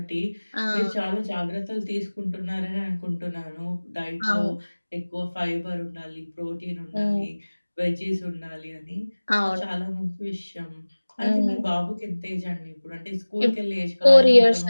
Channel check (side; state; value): both; inverted; correlation -1.00